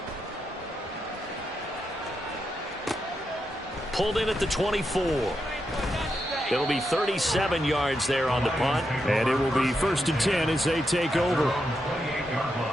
Pulled in at the 24. It'll be 37 yards there on the punt. And it will be 1st and 10 as they take over.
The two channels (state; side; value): normal; both; correlation 0.84